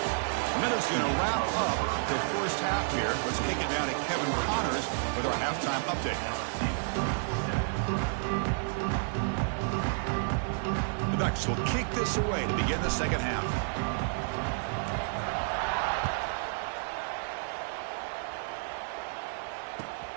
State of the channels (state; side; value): silent; left; 57 dB below the other